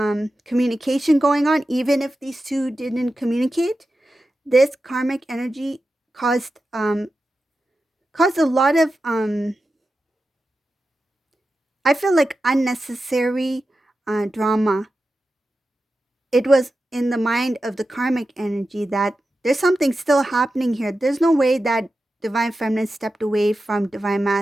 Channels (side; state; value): both; normal; correlation 0.92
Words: communication going on, even if these two didn't communicate. This karmic energy caused a lot of I feel like unnecessary drama. It was in the mind of the karmic energy that there's something still happening here. There's no way that divine feminine stepped away from divine